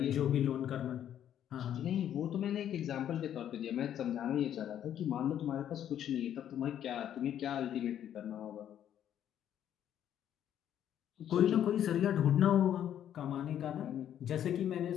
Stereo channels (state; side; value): quieter; right; 10.3 dB